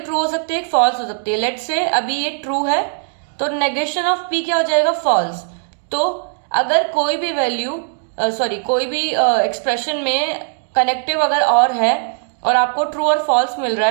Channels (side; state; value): left; silent; digital silence